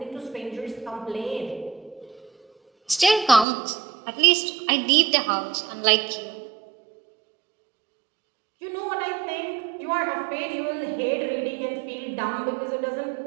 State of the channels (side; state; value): left; drops out; at 3.5 s